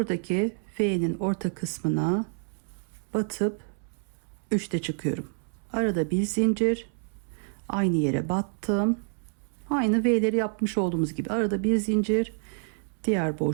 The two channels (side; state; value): left; silent; 59 dB below the other